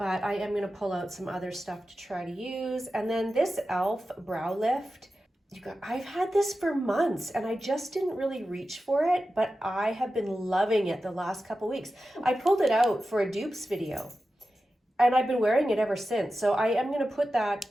I am gonna pull out some other stuff to try to use. And then this e.l.f. Brow Lift. I've had this for months and I just didn't really reach for it, but I have been loving it the last couple weeks. I pulled it out for a dupes video and I've been wearing it ever since. So I am gonna put that,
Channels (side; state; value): both; normal; correlation 0.93